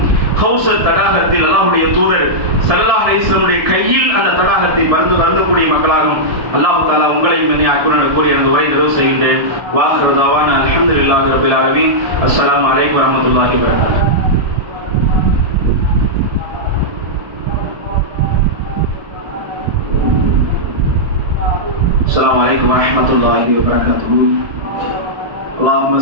கௌசர் தடாகத்தில் அல்லாஹ்வுடைய தூதர் ஸல்லல்லாஹு அலைஹி வஸல்லம் கையில் அந்த தடாகத்தை பருந்தக்கூடிய மக்களாகவும் அல்லாஹ் தஆலா உங்களையும் என்னை ஆக்குவான் கூறி எனது உரை நிறைவு செய்கின்றேன். வாஹிரு தஅவானா அல்ஹம்துலில்லாஹி ரப்பில் ஆலமீன். அஸ்ஸலாமு அலைக்கும் வரஹ்மத்துல்லாஹி வபரகாத்துஹு. السلام عليكم ورحمة الله وبركاته. اللهم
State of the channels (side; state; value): left; late; 1.7 ms